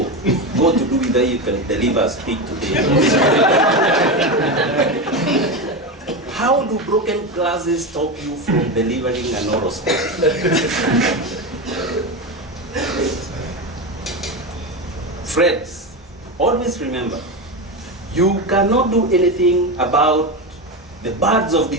got to do with that you can deliver a speech today? How do broken glasses stop you from delivering an oral speech? Friends, always remember, you cannot do anything about the birds of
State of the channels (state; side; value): normal; both; correlation 0.17